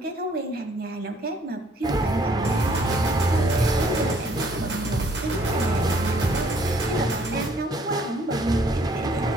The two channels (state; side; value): normal; both; correlation 0.63